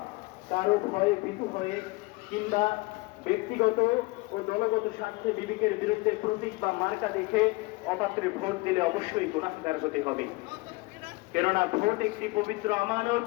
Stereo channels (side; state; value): right; quieter; 24.0 dB